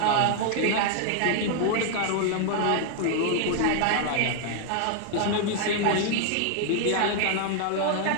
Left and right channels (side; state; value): both; different; correlation 0.00